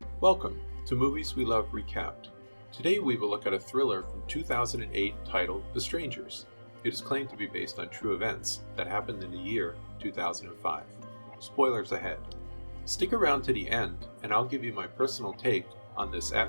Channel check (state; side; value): inverted; both; correlation -1.00